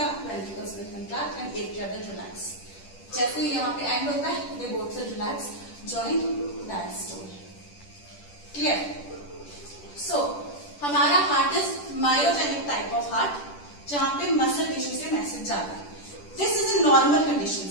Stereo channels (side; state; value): right; late; 10 ms